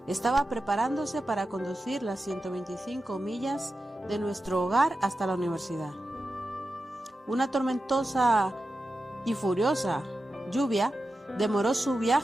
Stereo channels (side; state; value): both; normal; correlation 0.91